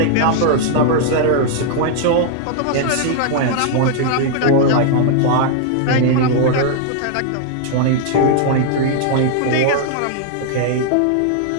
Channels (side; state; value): both; different; correlation 0.00